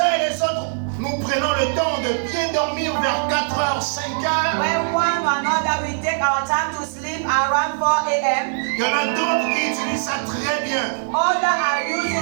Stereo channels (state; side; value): silent; left; 65 dB below the other